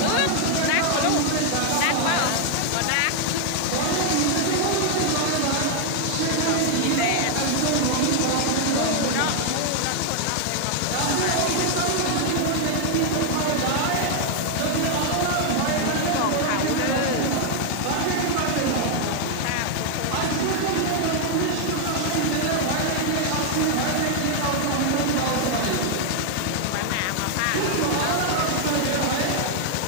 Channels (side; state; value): both; different; correlation 0.00